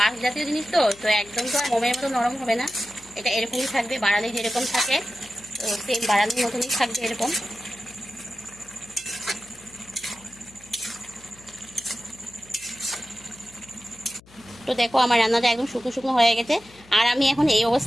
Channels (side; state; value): left; noise; hum, 25 dB below the sound